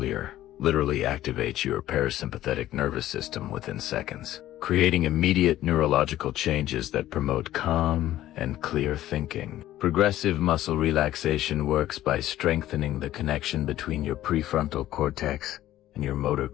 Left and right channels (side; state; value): right; quieter; 13.8 dB